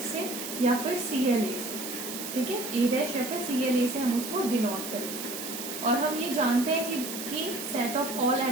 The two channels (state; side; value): noise; right; hiss, 7 dB below the sound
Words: से या फिर CLA से। ठीक है, ए डैश या फिर CLA से हम उसको डिनोट करेंगे। और हम ये जानते हैं कि set of all